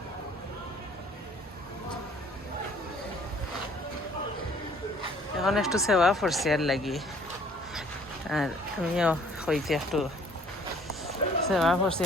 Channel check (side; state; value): both; normal; correlation 0.57